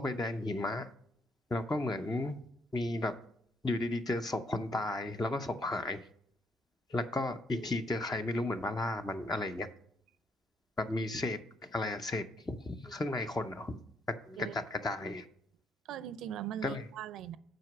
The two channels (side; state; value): both; normal; correlation 0.73